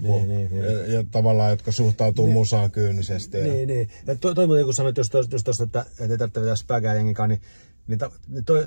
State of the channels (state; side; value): inverted; both; correlation -1.00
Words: ja tavallaan, jotka suhtautuu musaan kyynisesti. Niin. Ja toi muuten kun sanoit just tosta, että ei tarvitse vetää spägää jengikaan, niin